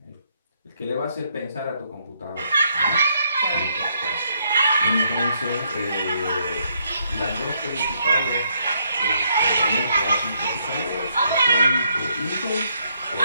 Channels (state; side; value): inverted; both; correlation -0.73